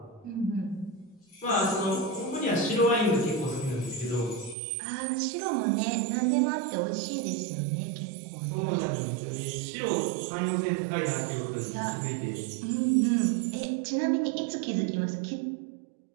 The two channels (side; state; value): left; drops out; at 4.5 s